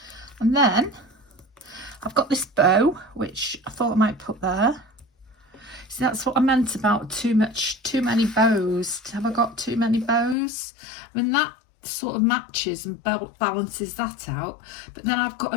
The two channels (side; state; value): right; drops out; at 10.4 s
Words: And then I've got this bow, which I thought I might put there. See, that's what I meant about too many bows. Have I got too many bows? I mean, that sort of matches and balances that out. But then I've got